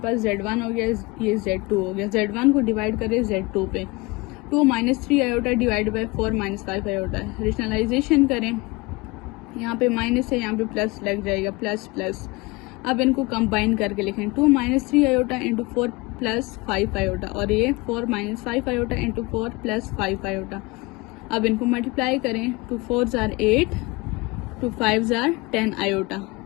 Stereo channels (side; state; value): right; quieter; 24.0 dB